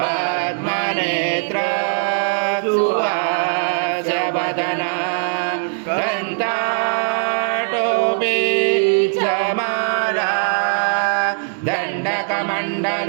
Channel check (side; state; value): left; silent; digital silence